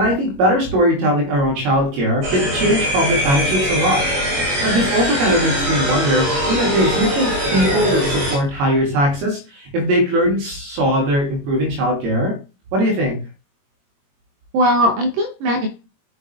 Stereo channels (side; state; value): left; late; 22 ms